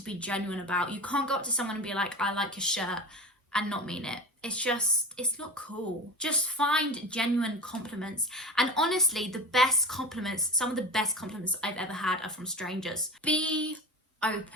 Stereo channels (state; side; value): normal; both; correlation 0.30